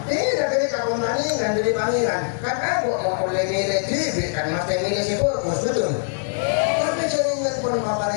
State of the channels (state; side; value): silent; right; digital silence